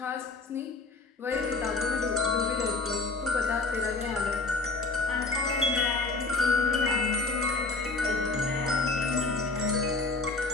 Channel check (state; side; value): quieter; right; 3.6 dB